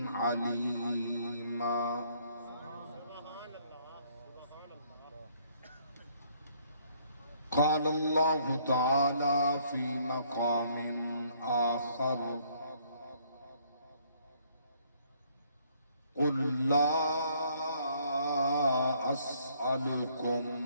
عليما. قال الله تعالى في مقام آخر: قل لا أسألكم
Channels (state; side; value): inverted; both; correlation -0.65